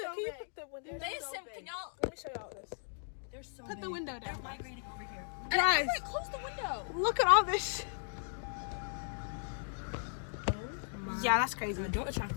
Can you put the window? Can y'all? Let me show y'all this. They're so Put big. the window down. Migrating over here. Guys, Close the window. look at all this. Yeah, that's crazy. Don't attract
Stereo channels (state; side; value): silent; right; digital silence